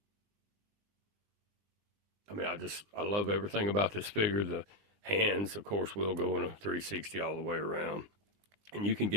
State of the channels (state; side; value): late; left; 20 ms